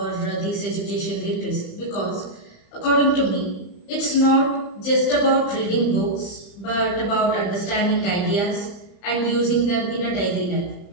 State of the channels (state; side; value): late; right; 34 ms